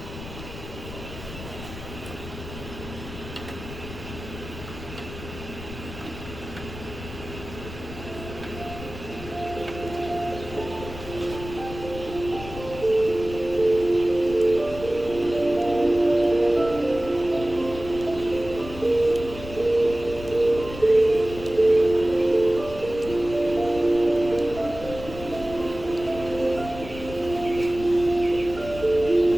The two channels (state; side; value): noise; left; rumble, 12 dB below the sound